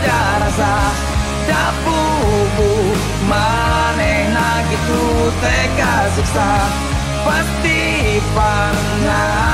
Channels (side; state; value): both; identical; correlation 1.00